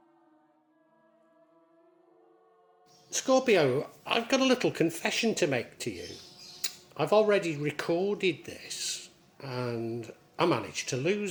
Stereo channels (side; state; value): both; identical; correlation 1.00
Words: Scorpio, I've got a little confession to make to you. I've already recorded this and I managed to